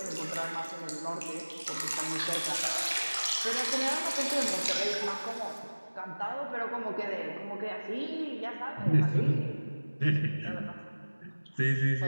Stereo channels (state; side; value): inverted; both; correlation -1.00